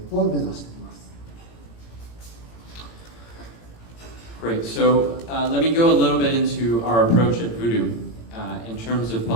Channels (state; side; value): late; right; 18 ms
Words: を目指しています。Great. So let me go a little bit into our approach at Voodoo in terms of